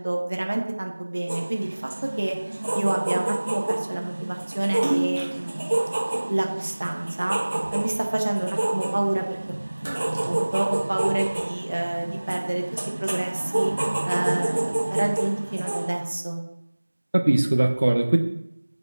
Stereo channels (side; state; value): both; inverted; correlation -1.00